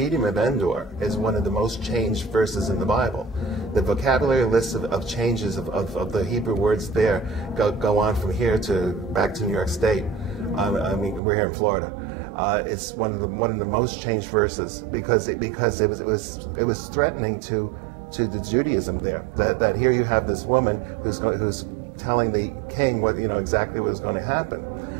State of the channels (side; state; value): left; drops out; at 11.2 s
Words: of Endor is one of the most changed verses in the Bible. The vocabulary list of changes of the Hebrew words there go on from here to back to New York State. I mean, we're here in Florida. It's one of the most changed verses because it was threatening to the Judaism there. That here you have this woman who's telling the king exactly what was going to